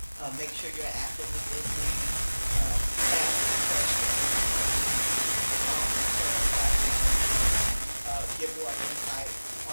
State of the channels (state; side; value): inverted; both; correlation -1.00